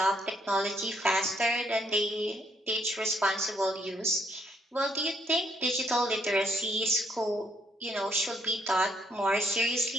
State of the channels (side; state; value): both; normal; correlation 0.69